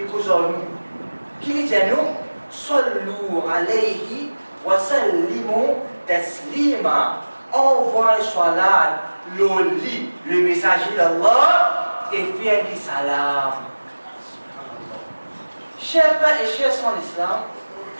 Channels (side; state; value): both; inverted; correlation -1.00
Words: causer nous. Qui dit à nous? Sallu alayhi wa sallimu taslima. Envoie salat, l'oli, le messager d'Allah, et faire du salam. Chers frères et chers en islam,